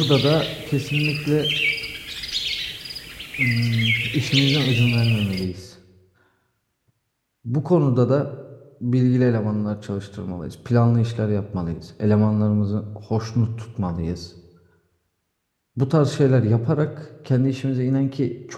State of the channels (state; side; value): identical; both; correlation 1.00